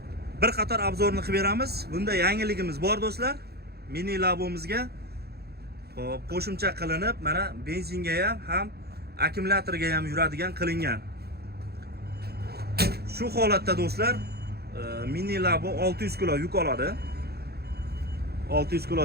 bir qator obzorni qilib beramiz. Bunda yangiligimiz bor do'stlar. Mini Labomizga xo'p qo'shimcha qilinib, mana benzinga ham akkumulyatorga ham yuradigan qilingan. Shu holatda do'stlar, Mini Labo 600 kilo yuk oladi. 600 kilo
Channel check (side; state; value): left; late; 0.46 ms